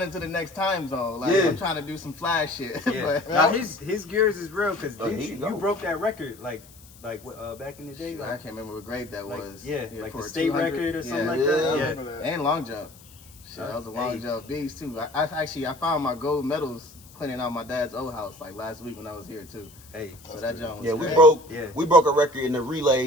into the next time zone. Like I'm trying to do some flash shit. Yeah. Now his gears is real because you broke that record like back in the day. I can't remember what grade that was. Yeah, like the state record or something like that. Yeah, and long jump. Shit, that was a long jump beast too. I found my gold medals cleaning out my dad's old house like last week when I was here too. Hey, so that jump was we broke a record in the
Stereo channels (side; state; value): left; noise; hiss, 23 dB below the sound